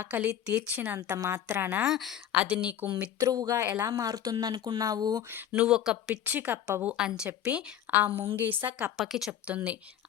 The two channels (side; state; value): right; quieter; 10.5 dB